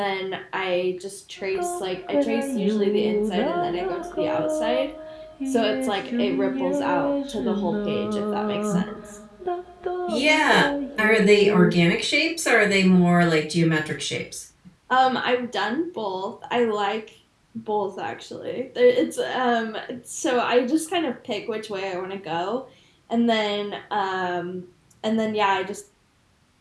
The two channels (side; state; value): both; identical; correlation 1.00